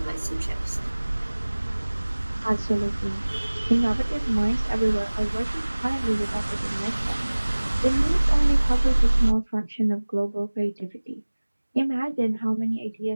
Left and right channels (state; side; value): inverted; both; correlation -1.00